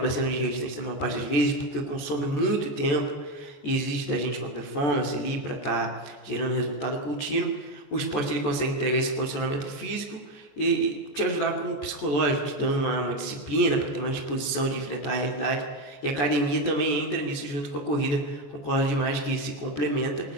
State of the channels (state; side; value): late; right; 14 ms